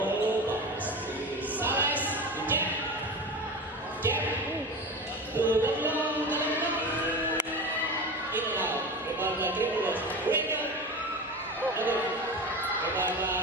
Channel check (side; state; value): both; normal; correlation 0.28